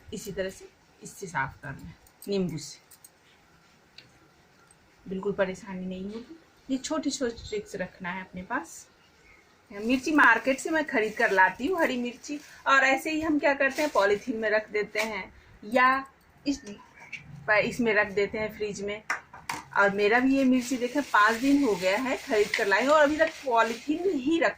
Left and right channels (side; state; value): both; identical; correlation 1.00